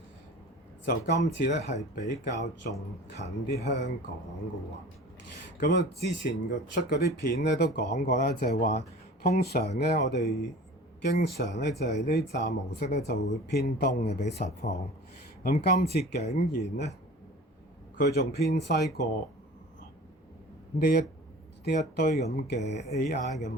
就今次咧係比較仲近啲香港嘅喎。咁啊，之前出嗰啲片咧都講過啦，就係話通常咧我哋經常咧就係呢站模式咧就會偏東嘅比實況。咁今次竟然咧佢仲偏西過呢一堆咁嘅 AI 嘅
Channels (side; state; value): both; normal; correlation 0.41